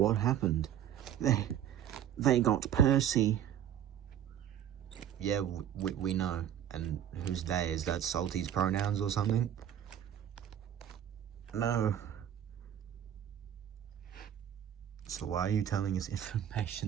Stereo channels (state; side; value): quieter; left; 10.2 dB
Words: happened? They got Percy. Yeah, we know. And who's they? Is that Salty's pronouns or something? No. So why are you telling us